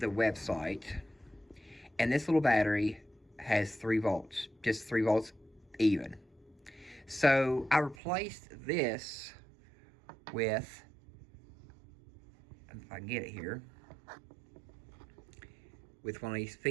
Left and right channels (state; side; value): drops out; left; at 8.0 s